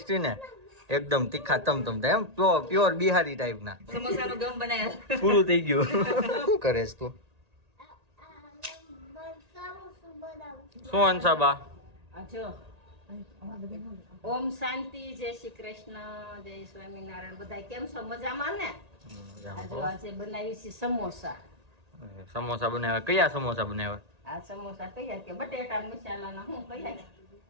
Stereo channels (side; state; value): left; late; 1.8 ms